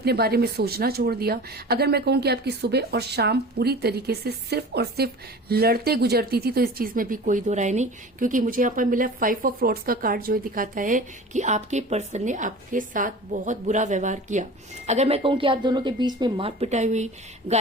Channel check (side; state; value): both; normal; correlation 0.38